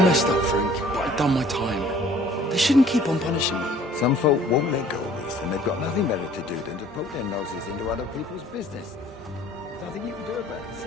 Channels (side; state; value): both; normal; correlation 0.54